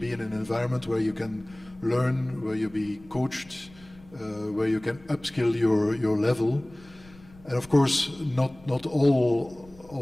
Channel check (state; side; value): noise; left; rumble, 24 dB below the sound